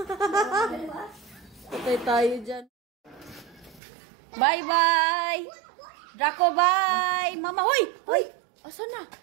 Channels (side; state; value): left; drops out; at 3.8 s